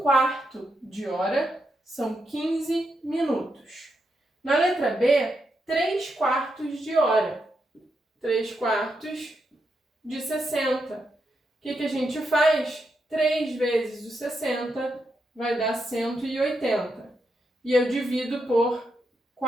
de hora são 15 minutos. Na letra B, 3/4 de hora. 3/4 de 60. O que a gente faz? 3 vezes o 60 vai dar 180. E eu divido por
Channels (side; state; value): both; normal; correlation 0.83